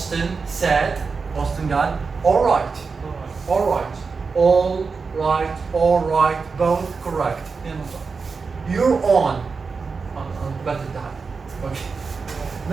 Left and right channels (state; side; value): quieter; left; 4.8 dB